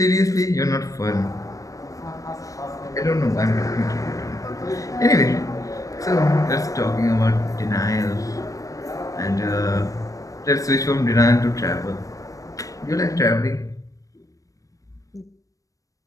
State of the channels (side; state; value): right; late; 0.16 ms